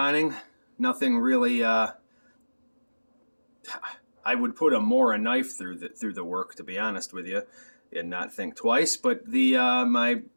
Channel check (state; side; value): inverted; both; correlation -1.00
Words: Nothing really. I would put a Mora knife through the work, to be honest with you, and not think twice. But the my